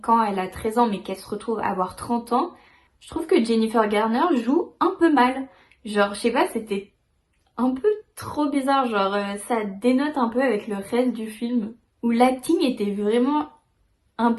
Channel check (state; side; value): identical; both; correlation 1.00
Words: elle a 13 ans mais qu'elle se retrouve à avoir 30 ans, je trouve que Jennifer Garner joue un peu mal. Genre je sais pas, c'était un peu trop bizarre, genre ça dénote un peu avec le reste du film, où l'acting était vraiment un